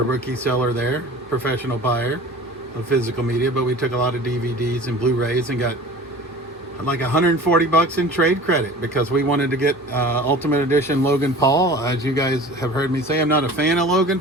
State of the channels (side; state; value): both; normal; correlation 0.41